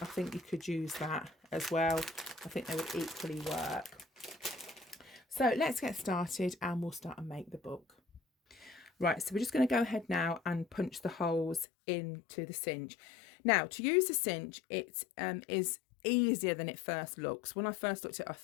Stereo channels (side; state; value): right; drops out; at 11.7 s